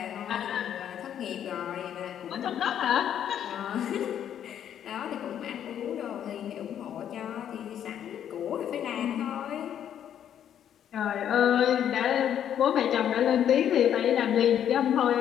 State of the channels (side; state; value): right; quieter; 9.8 dB